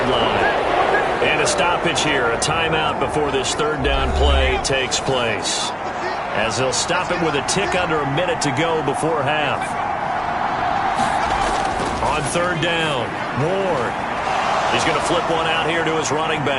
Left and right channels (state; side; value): identical; both; correlation 1.00